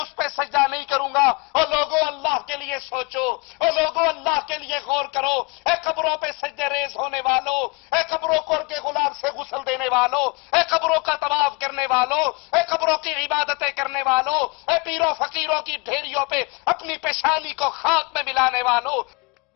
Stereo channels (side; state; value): right; quieter; 28.8 dB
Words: پہ سجدہ نہیں کروں گا۔ اور لوگوں اللہ کے لیے سوچو، اور لوگوں اللہ کے لیے غور کرو، اے قبروں پہ سجدے ریز ہونے والوں، اے قبروں کو کے غلام سے غسل دینے والوں، اے قبروں کا طواف کرنے والوں، اے قبروں کی عبادتیں کرنے والوں، اے پیروں فقیروں کی ڈھیریوں پہ اپنی پیشانی کو خاک میں ملانے والوں،